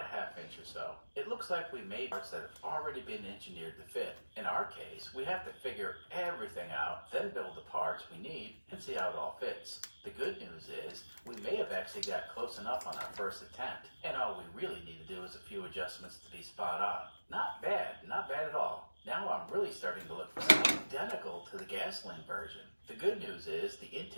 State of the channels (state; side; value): inverted; both; correlation -1.00